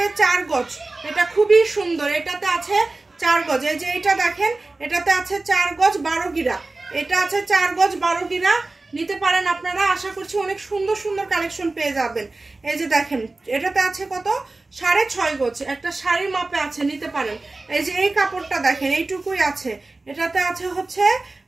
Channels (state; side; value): quieter; left; 3.2 dB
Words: 4 গজ, এটা খুবই সুন্দর, এটাতে আছে 4 গজ। এই যে এটা দেখেন, এটাতে আছে 4 গজ 12 গিরা, এটা আছে 4 গজ 12 গিরা। নিতে পারেন আপনারা, আশা করছি অনেক সুন্দর সুন্দর কালেকশন পেয়ে যাবেন। এই যে দেখেন, এটাতে আছে কত, 6.5 গজ, একটা শাড়ির মাপে আছে, নিতে পারেন। এই যে এই কাপড়টা দেখেন, এইটুকুই আছে, এটাতে আছে হচ্ছে